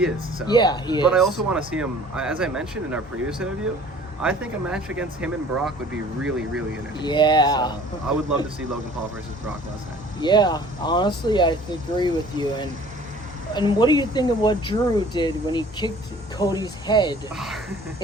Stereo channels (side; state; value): both; normal; correlation 0.50